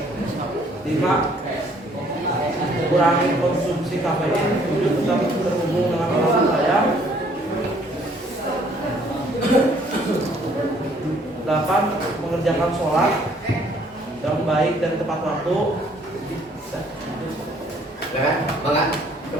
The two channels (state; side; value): normal; both; correlation 0.61